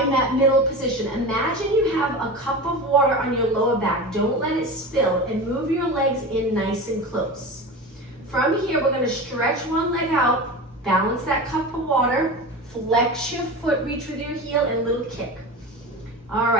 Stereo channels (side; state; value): both; normal; correlation 0.28